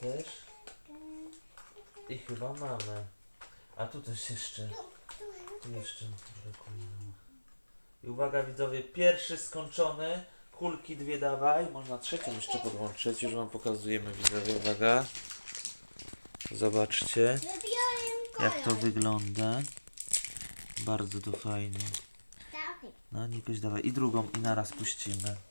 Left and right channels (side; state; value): both; inverted; correlation -1.00